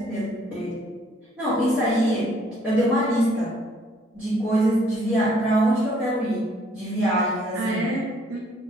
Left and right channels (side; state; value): both; normal; correlation 0.63